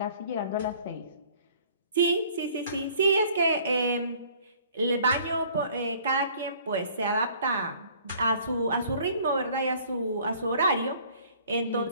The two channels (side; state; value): both; inverted; correlation -0.55